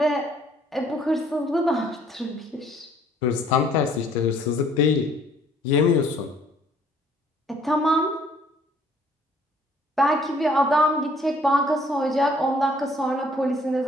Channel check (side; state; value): both; normal; correlation 0.60